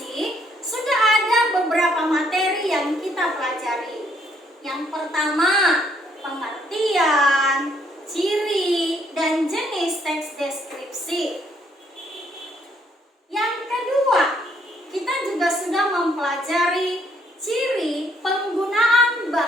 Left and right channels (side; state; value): both; normal; correlation 0.69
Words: sudah ada beberapa materi yang kita pelajari. Yang pertama, pengertian, ciri, dan jenis teks deskripsi. Yang kedua, kita juga sudah mempelajari ciri penggunaan